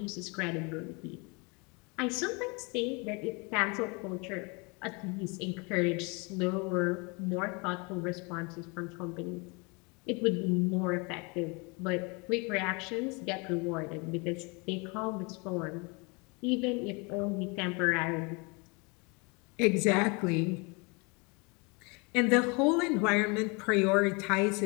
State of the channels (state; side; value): quieter; right; 29.9 dB